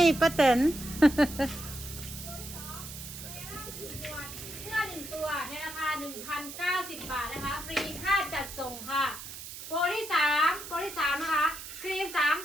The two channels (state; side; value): noise; right; hiss, 11 dB below the sound